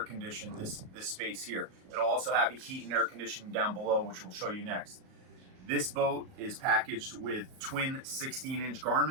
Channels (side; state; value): left; late; 38 ms